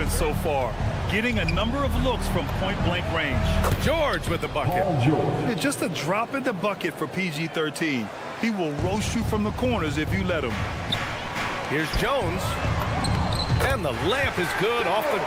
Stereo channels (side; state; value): both; identical; correlation 1.00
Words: so far. Getting a number of looks from point-blank range. George with the bucket. Yeah, just a drop in the bucket for PG-13. He will roast you from the corners if you let him. Here's Jones. And the layup is good off the